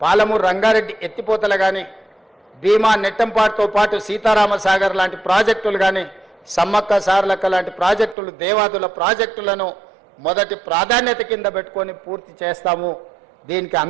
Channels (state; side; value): drops out; left; at 8.2 s